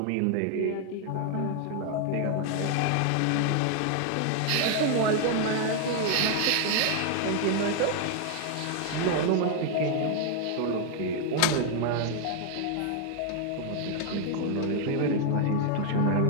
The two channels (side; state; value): both; different; correlation 0.00